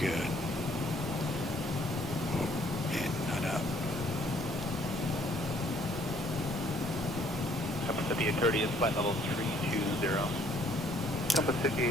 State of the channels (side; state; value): both; normal; correlation 0.63